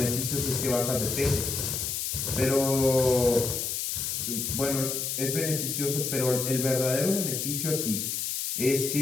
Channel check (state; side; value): noise; left; hiss, 2 dB below the sound